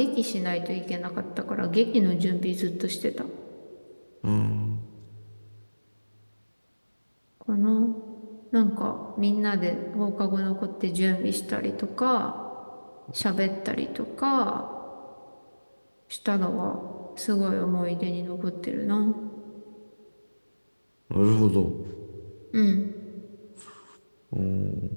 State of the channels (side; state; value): both; inverted; correlation -1.00